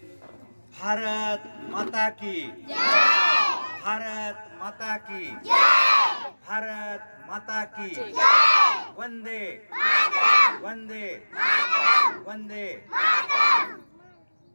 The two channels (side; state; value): both; inverted; correlation -1.00